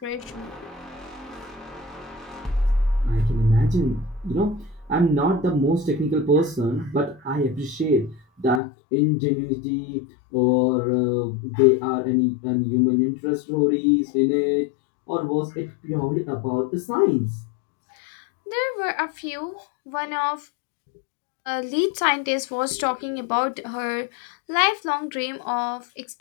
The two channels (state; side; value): drops out; right; at 8.6 s